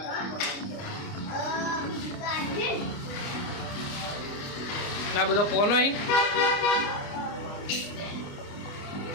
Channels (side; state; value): right; late; 29 ms